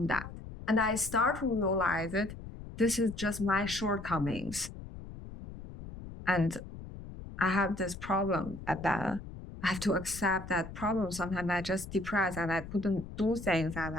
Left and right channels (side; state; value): left; noise; rumble, 12 dB below the sound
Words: that. And I start to realize that this is just my shortcomings. And I have this problem at that. I have to accept that problem. Sometimes I just depressed and I couldn't do things, and